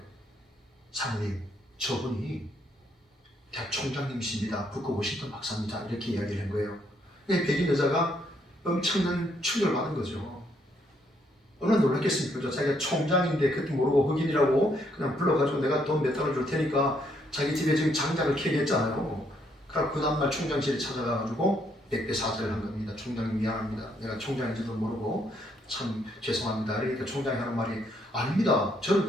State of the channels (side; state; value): both; normal; correlation 0.72